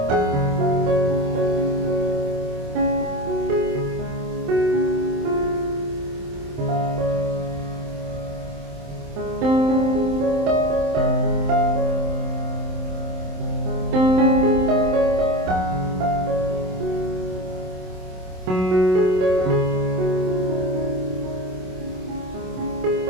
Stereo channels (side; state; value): left; late; 27 ms